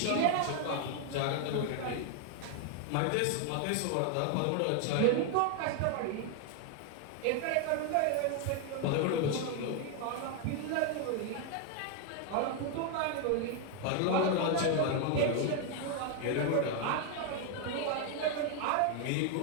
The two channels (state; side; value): different; both; correlation 0.01